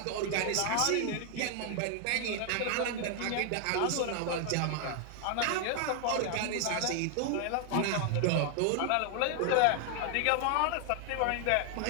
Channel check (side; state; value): both; different; correlation 0.00